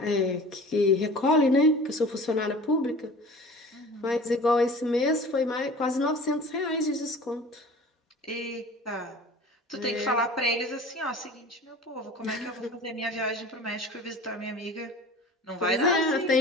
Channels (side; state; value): both; normal; correlation 0.41